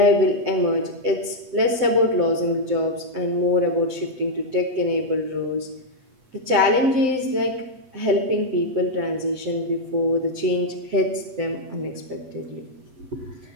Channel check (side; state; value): left; late; 8.2 ms